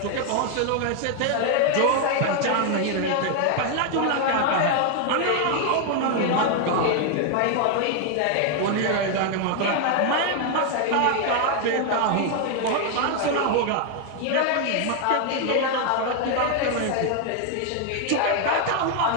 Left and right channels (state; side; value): different; both; correlation 0.00